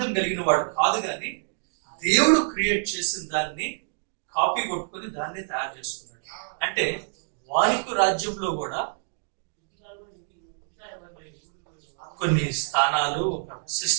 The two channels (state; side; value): silent; left; digital silence